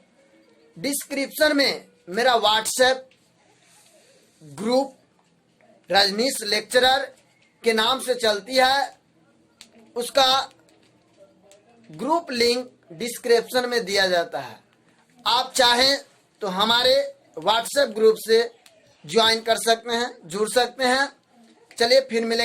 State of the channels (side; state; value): both; identical; correlation 1.00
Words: डिस्क्रिप्शन में मेरा व्हाट्सएप ग्रुप रजनीश लेक्चरर के नाम से चलती है, उसका ग्रुप लिंक डिस्क्रिप्शन में दिया जाता है। आप चाहें तो हमारे व्हाट्सएप ग्रुप से ज्वाइन कर सकते हैं, जुड़ सकते हैं। चलिए फिर